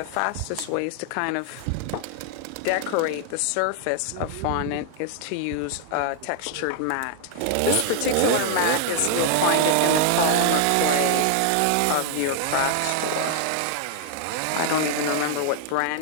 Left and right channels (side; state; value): both; different; correlation 0.00